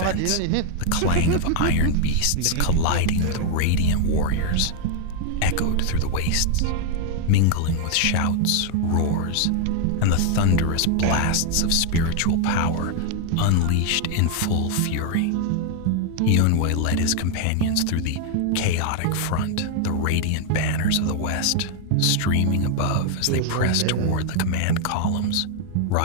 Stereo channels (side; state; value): both; different; correlation 0.00